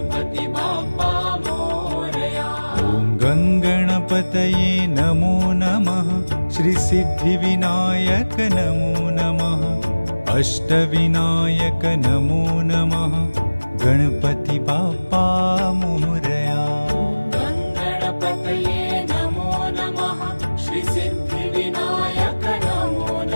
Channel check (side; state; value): both; inverted; correlation -1.00